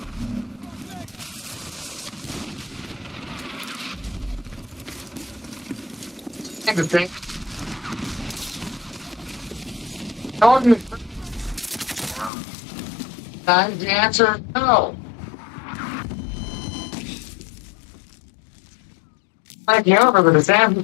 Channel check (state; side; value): drops out; right; at 12.3 s